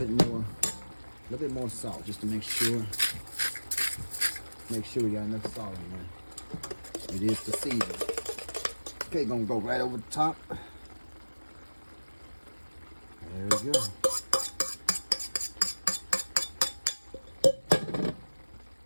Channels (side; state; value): both; inverted; correlation -1.00